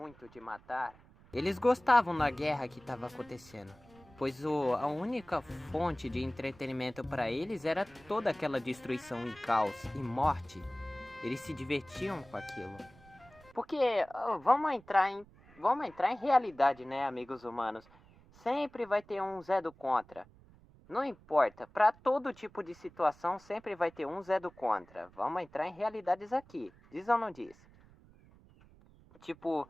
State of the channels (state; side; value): noise; right; rumble, 25 dB below the sound